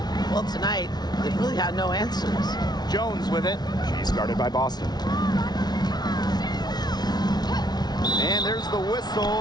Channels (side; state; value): right; late; 0.19 ms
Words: Well, tonight, they've really had no answers. Jones with it. She's guarded by Boston. And there's the